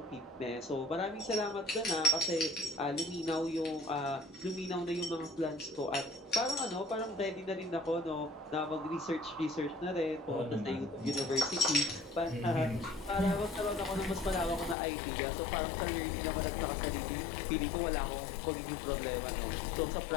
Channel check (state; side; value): drops out; right; at 14.8 s